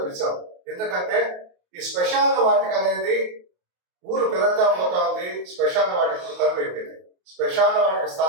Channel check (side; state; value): left; late; 28 ms